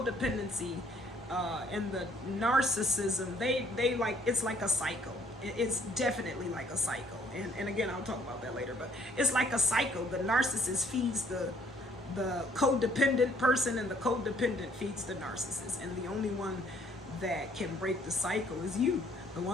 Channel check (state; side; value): normal; both; correlation 0.64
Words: and the narcissism, they like, it's like a cycle. It's definitely like a cycle. And again, I'll talk about that later, but it's like a cycle. The narcissist feeds the codependent person, and the codependent feeds the narcissist. And the only one that can break the cycle is you, the